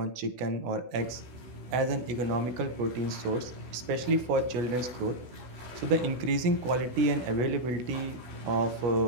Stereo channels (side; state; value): left; late; 16 ms